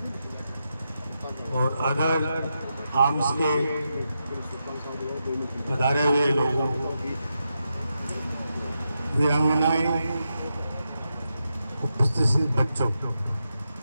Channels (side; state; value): both; inverted; correlation -0.86